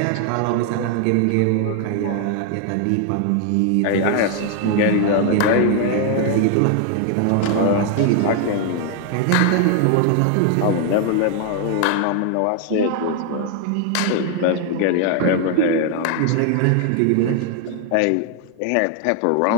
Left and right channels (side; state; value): both; different; correlation 0.00